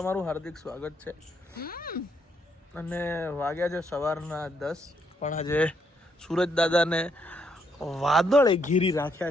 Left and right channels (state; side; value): normal; both; correlation 0.74